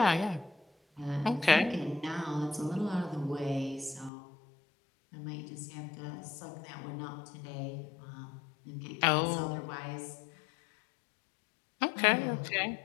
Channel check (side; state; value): right; drops out; at 4.1 s